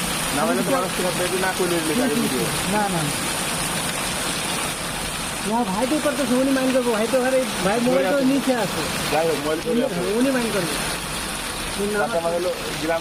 নামাইলে তো মানুষ তোমার না করলে না না না ভাই তো করতেছে, উনি মাইন করবো। ভাই তো ঘরে ভাই মোবাইল তো নিচে আছে। যাই হোক মোবাইল করে উনি মাইন করবে। আমার হলো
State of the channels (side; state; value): both; identical; correlation 1.00